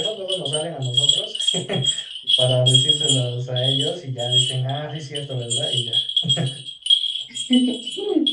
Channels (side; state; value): both; identical; correlation 1.00